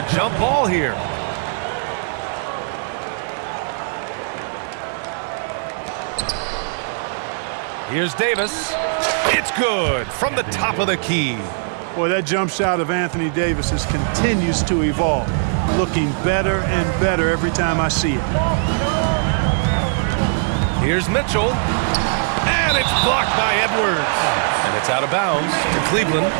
jump ball here. Here's Davis. It's good from the top of the key. Boy, that jump shot of Anthony Davis continues to evolve, looking better and better every time I see it. Here's Mitchell. And it's blocked by Edwards. And it's out of bounds to Cleveland.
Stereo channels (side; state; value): left; silent; digital silence